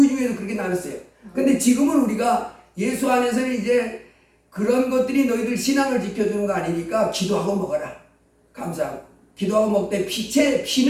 중에도 그렇게 나눴어요. 근데 지금은 우리가 예수 안에서는 이제 그런 것들이 너희들 신앙을 지켜주는 거 아니니까 기도하고 먹어라. 감사하고. 기도하고 먹되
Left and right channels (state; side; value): identical; both; correlation 1.00